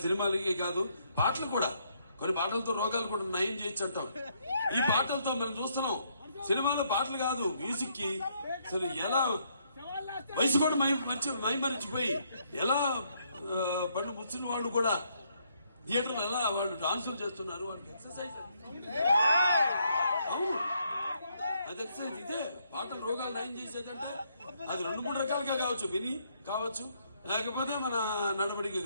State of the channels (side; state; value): both; inverted; correlation -0.72